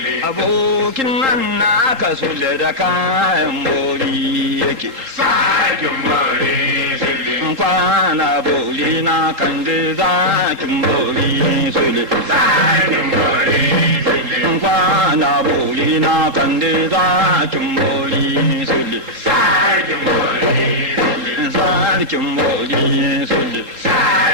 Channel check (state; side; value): late; left; 4.3 ms